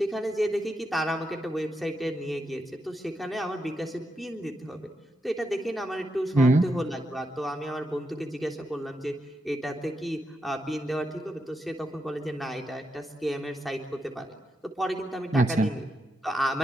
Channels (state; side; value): normal; both; correlation 0.84